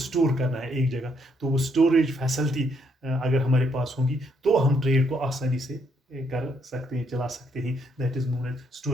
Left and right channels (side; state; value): both; normal; correlation 0.72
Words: करना है एक जगह तो वो स्टोरेज फैसिलिटी अगर हमारे पास होगी तो हम ट्रेड को आसानी से कर सकते हैं, चला सकते हैं. That is known as